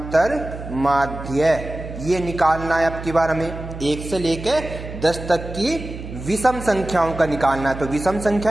माध्य, ये निकालना है अब की बार हमें। 1 से लेकर 10 तक की विषम संख्याओं का निकालना है। तो विषम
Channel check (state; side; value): noise; right; hum, 10 dB below the sound